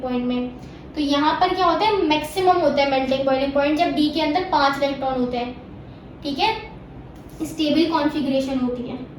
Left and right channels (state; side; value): identical; both; correlation 1.00